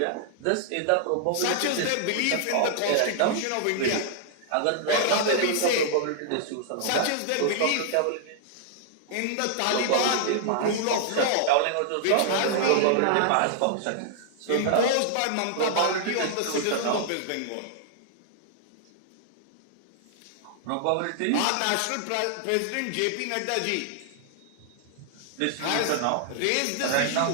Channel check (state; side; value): different; both; correlation -0.01